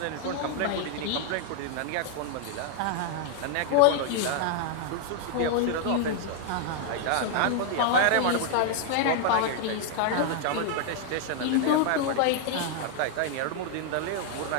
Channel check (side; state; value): both; different; correlation 0.00